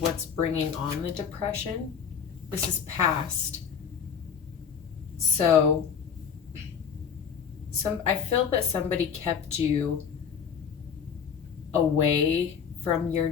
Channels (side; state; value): right; quieter; 7.1 dB